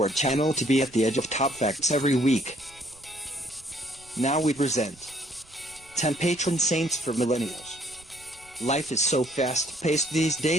our channel to be at the edge of top facts every week. Now we present 10 patron saints for millennials. Life is so fast-paced these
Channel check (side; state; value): right; noise; rumble, 26 dB below the sound